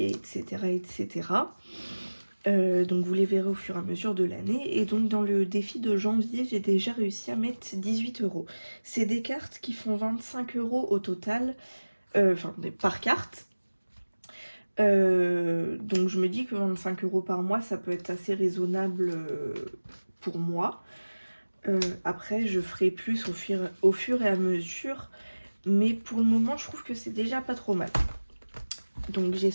etc. etc. Donc vous les verrez au fur et à mesure de l'année. Et donc dans le défi de janvier, j'ai déjà réussi à mettre 18 €. C'est des cartes qui font 25 € au total, enfin par carte. Donc je me dis que 25 € par mois, ça peut être assez raisonnable pour moi. Après, je ferai plus au fur et à mesure, mais pour le moment, je trouve que c'est déjà pas trop mal. Donc j'ai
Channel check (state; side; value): inverted; both; correlation -1.00